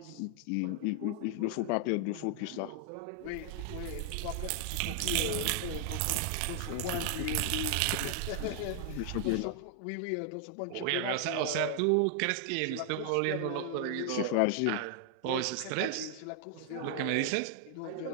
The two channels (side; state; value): both; different; correlation 0.00